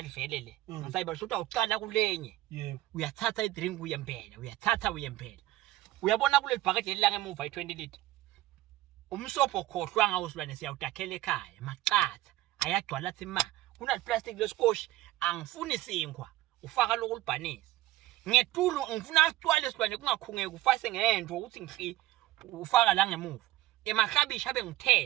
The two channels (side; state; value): left; quieter; 16.3 dB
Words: vele le ngisayibali shothi awuqala kulenye yebo uyathatha idrink uyempela uyabona kule bhakede elilanga emuva i20 liter umsobho khohlwa ngawo silwane siyawudakhela ekhaya maqatha ayagcwala athi ma kuna plastic lesikoshi angifuni sinkwa ufaka lokulibhanisa ngetulu ngifuna acwale silwane kungakhungeke ufase ngento ukuthi ngihli ufaka la ngemuva emahlabishi abe